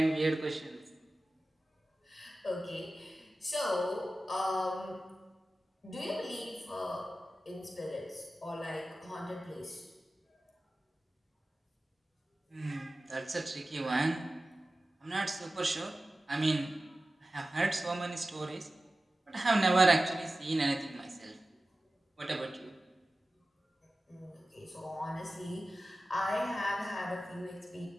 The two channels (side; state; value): both; normal; correlation 0.95